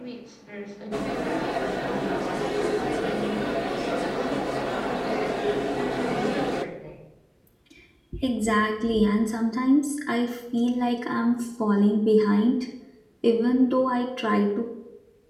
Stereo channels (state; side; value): identical; both; correlation 1.00